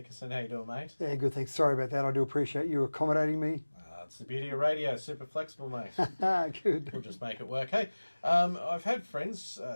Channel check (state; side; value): inverted; both; correlation -1.00